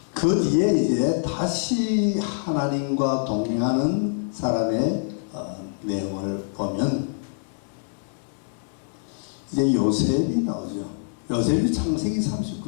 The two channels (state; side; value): silent; right; digital silence